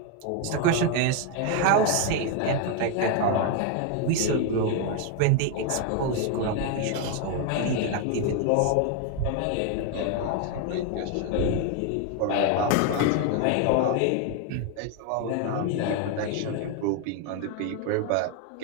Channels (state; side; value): different; both; correlation 0.01